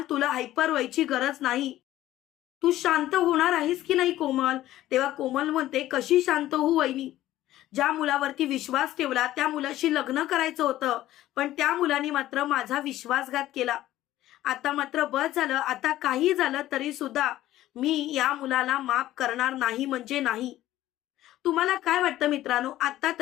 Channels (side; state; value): right; quieter; 14.5 dB